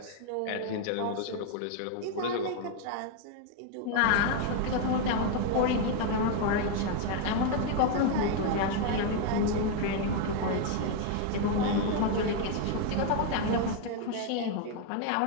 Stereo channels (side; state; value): both; different; correlation 0.01